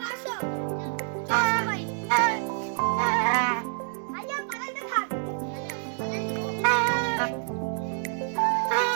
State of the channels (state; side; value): silent; left; digital silence